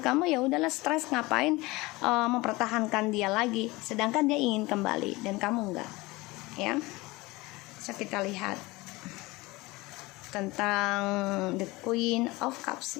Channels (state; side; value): quieter; right; 22.0 dB